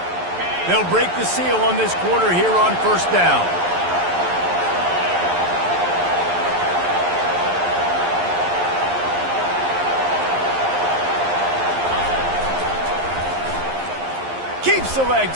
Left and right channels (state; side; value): late; left; 11 ms